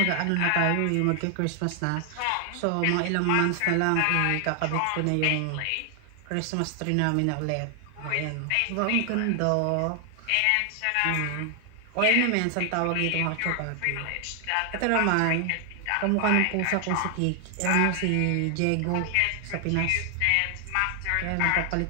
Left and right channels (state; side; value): different; both; correlation 0.00